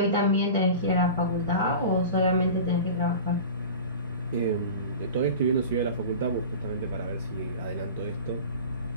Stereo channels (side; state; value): both; inverted; correlation -0.35